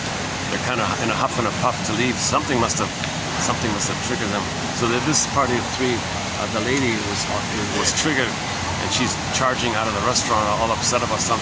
They're kind of in a huff and a puff to leave. Something must have triggered them. So that this party of 3, the lady was triggered, and she's charging out of the restaurant, all upset about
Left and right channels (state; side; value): identical; both; correlation 1.00